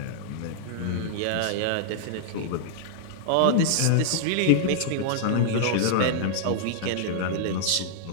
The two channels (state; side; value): different; both; correlation -0.01